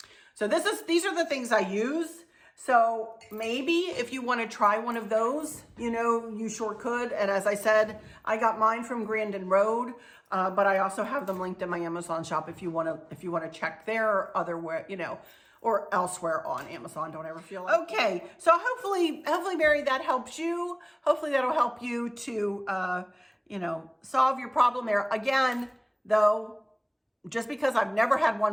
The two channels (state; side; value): identical; both; correlation 1.00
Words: So these are the things I use. So maybe if you want to try one of those, you know, you sure could. And as I said, I got mine from Grandin Road, but I also have them linked in my Amazon shop if you want to check there or otherwhere, you know, or elsewhere on Amazon. Don't ever feel like. Okay, so hopefully, Mary, that helps you. Hopefully that'll help you to, you know, solve your problem there. Again, though, just because I've never had